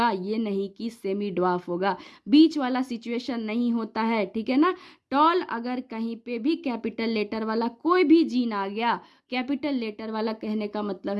ये नहीं कि सेमी ड्वार्फ होगा। बीच वाला सिचुएशन नहीं होता है, ठीक है ना। टॉल अगर कहीं पे भी कैपिटल लेटर वाला कोई भी जीन आ गया, कैपिटल लेटर वाला कहने का मतलब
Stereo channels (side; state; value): both; identical; correlation 1.00